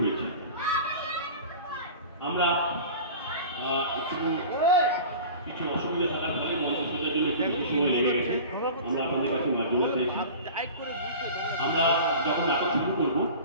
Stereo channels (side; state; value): both; inverted; correlation -0.37